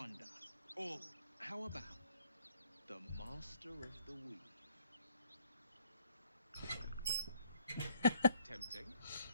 Or how about the Master of the Weave? Tempting.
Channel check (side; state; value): both; inverted; correlation -0.65